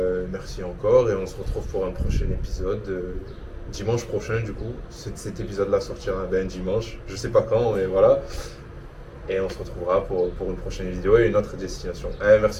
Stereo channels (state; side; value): identical; both; correlation 1.00